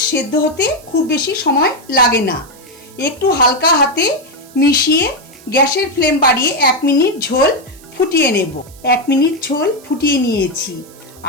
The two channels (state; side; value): noise; right; hiss, 23 dB below the sound